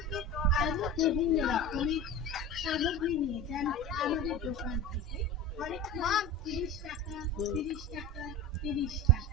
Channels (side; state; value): both; normal; correlation 0.30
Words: আরো বিভিন্ন রকমের সামগ্রী নিয়ে যান আমাদের দোকান থেকে। অনেক 30 টাকা 30 টাকা 30